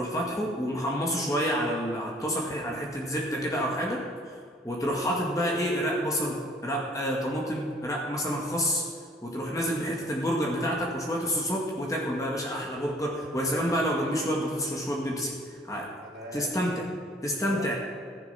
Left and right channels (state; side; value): normal; both; correlation 0.57